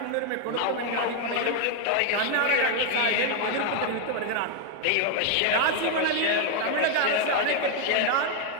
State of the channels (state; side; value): different; both; correlation 0.00